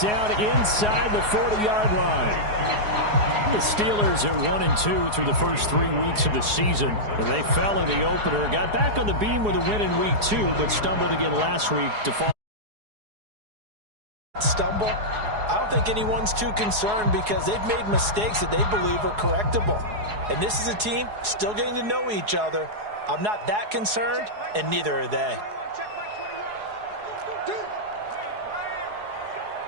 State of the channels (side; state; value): left; late; 4.8 ms